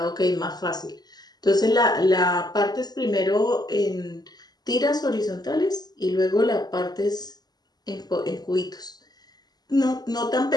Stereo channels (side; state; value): right; late; 0.20 ms